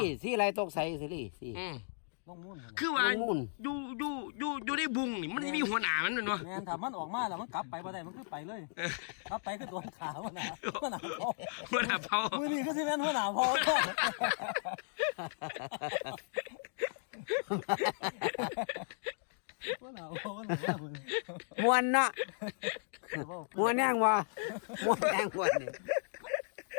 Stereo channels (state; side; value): silent; right; digital silence